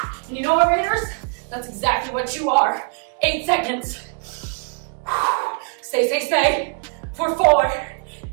And you know what, Raiders? That's exactly what you are. 8 seconds. Stay. For 4.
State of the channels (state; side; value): quieter; left; 38.2 dB